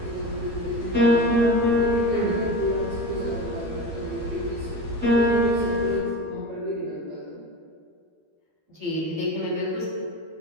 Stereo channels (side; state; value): left; late; 12 ms